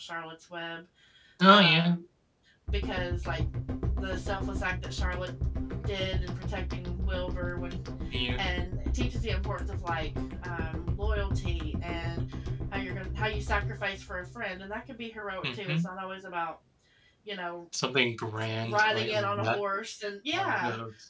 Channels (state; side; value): identical; both; correlation 1.00